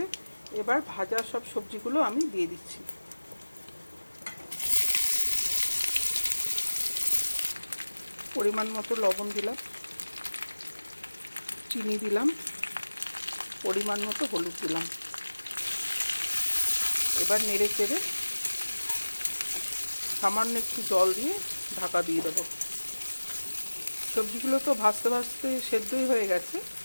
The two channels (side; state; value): both; inverted; correlation -1.00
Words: এবার ভাজা সব সবজিগুলো আমি দিয়ে দিচ্ছি। পরিমাণ মতো লবণ দিলাম, চিনি দিলাম, পরিমাণ মতো হলুদ দিলাম। এবার নেড়ে চেড়ে সামান্য একটু জল দিয়ে ঢাকা দিয়ে দেবো। সবজিগুলো তো ভাজতে ভাজতে সেদ্ধই হয়ে গেছে,